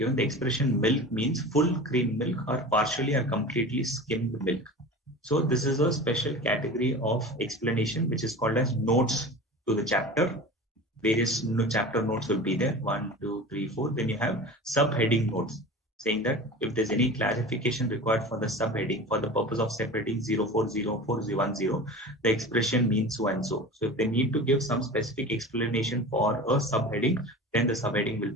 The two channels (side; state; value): both; normal; correlation 0.34